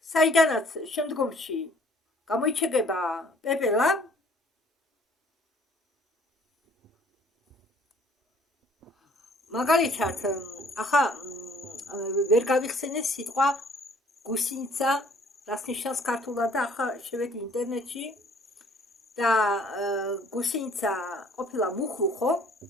საიდანაც შემდგომში გამოიჩეკება პეპელა, მაგალითად, ახლა ვერ გავიხსენე სიტყვა გუსინიცა, რას ნიშნავს ქართულად და ახლა შევედი ინტერნეტში და გუსინიცა ყოფილა მუხლუხო.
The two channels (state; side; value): normal; both; correlation 0.57